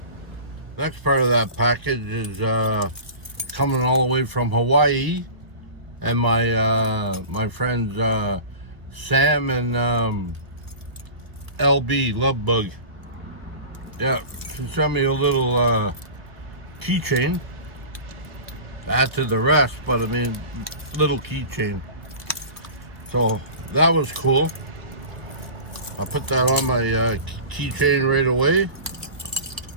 Next part of that package is coming all the way from Hawaii, and my friends Sam and LB Lovebug. Yeah, she sent me a little keychain. Add to the rest, but I mean, little keychain. So that was cool. I put that on my keychain right away,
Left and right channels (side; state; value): left; late; 1.2 ms